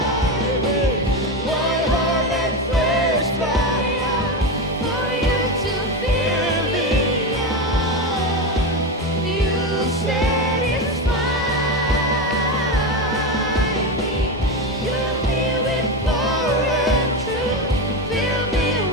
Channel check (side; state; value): both; normal; correlation 0.16